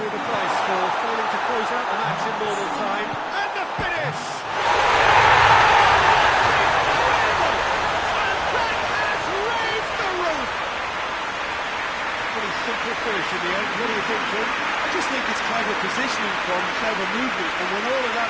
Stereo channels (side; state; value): both; identical; correlation 1.00